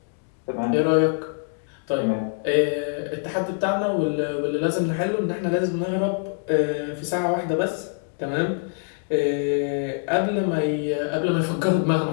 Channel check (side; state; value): right; silent; digital silence